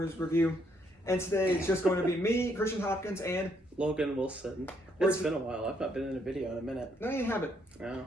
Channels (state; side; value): normal; both; correlation 0.72